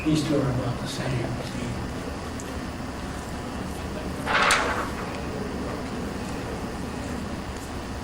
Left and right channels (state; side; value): identical; both; correlation 1.00